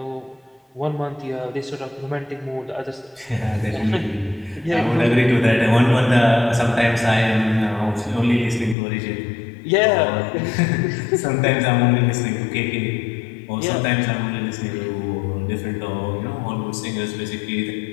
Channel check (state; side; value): drops out; right; at 8.8 s